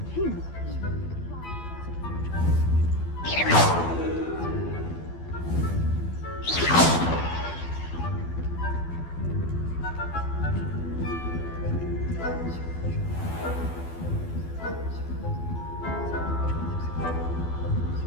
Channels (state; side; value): late; right; 12 ms